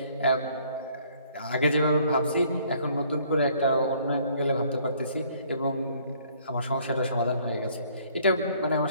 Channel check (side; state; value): both; inverted; correlation -0.61